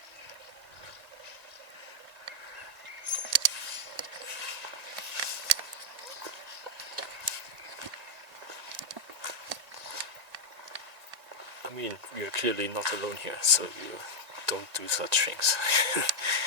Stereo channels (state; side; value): late; left; 1.8 ms